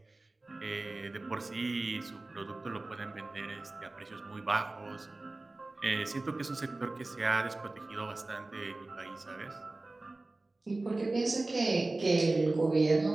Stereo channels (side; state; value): left; quieter; 3.0 dB